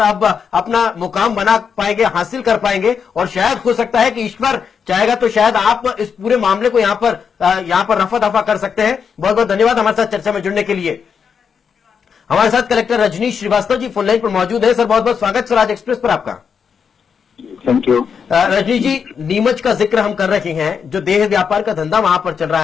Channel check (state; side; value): quieter; right; 6.6 dB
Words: आप अपना मुकाम बना पाएंगे, हासिल कर पाएंगे। और शायद हो सकता है कि ईश्वर चाहेगा तो शायद आप इस पूरे मामले को यहां पर रफा दफा कर सकते हैं। बहुत बहुत धन्यवाद हमारे साथ चर्चा में जुड़ने के लिए। हमारे साथ collector Rajneesh Srivastava ji phone line पर मौजूद है। सर, बहुत बहुत स्वागत स्वराज एक्सप्रेस पर आपका। Thank you. रजनीश जी, नीमच का जिक्र हम कर रहे हैं, जो देह व्यापार का धंधा वहां पर चल